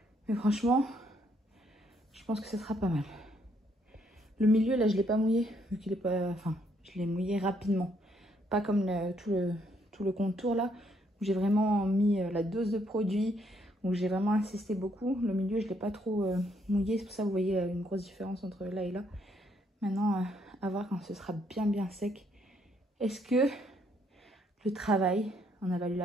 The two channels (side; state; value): both; normal; correlation 0.71